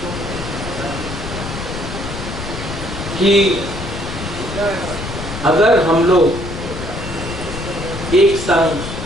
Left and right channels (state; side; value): noise; left; rumble, 8 dB below the sound